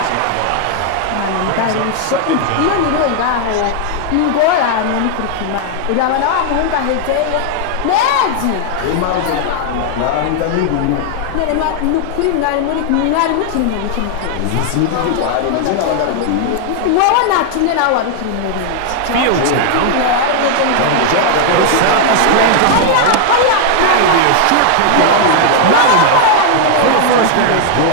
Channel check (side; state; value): both; different; correlation 0.00